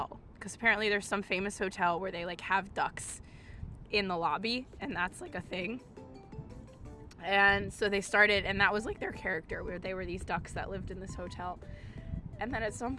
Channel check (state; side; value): identical; both; correlation 1.00